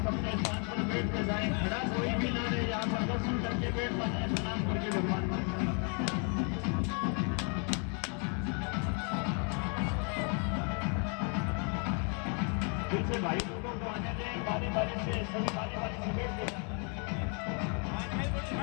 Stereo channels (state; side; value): quieter; right; 38.4 dB